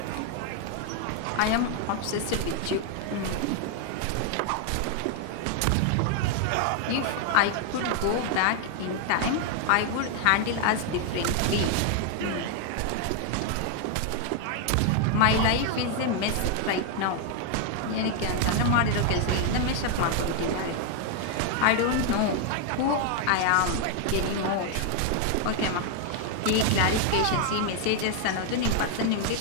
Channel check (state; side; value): different; both; correlation 0.00